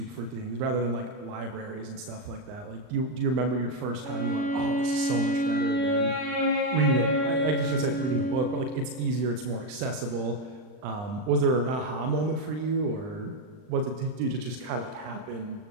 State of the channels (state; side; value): late; left; 39 ms